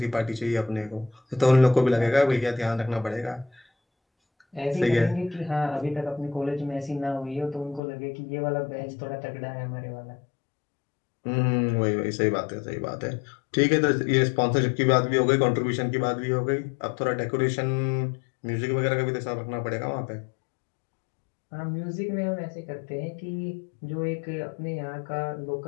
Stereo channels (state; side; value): drops out; right; at 7.8 s